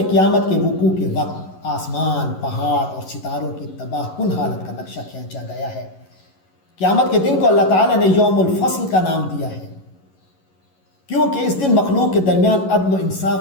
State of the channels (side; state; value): right; late; 11 ms